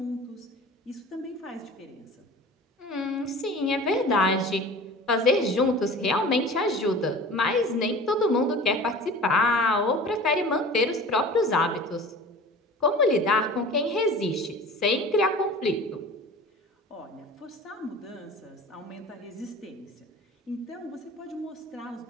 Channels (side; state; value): both; normal; correlation 0.40